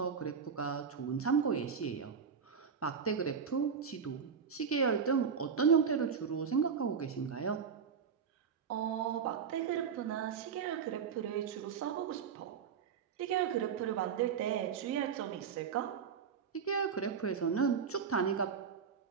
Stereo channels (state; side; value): quieter; left; 6.7 dB